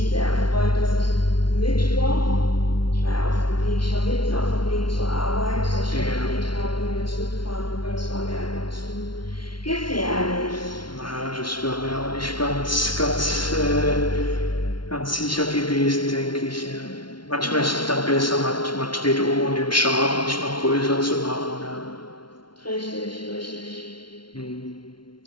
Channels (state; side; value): late; right; 0.72 ms